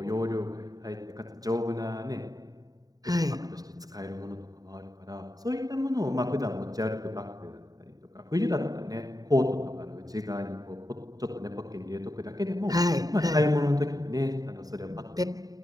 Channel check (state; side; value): late; left; 0.18 ms